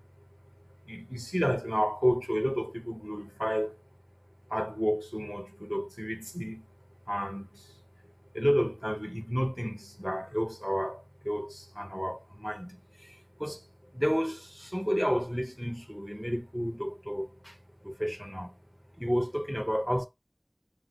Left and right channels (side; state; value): both; identical; correlation 1.00